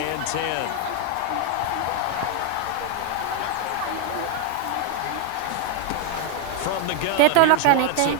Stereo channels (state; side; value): different; both; correlation 0.00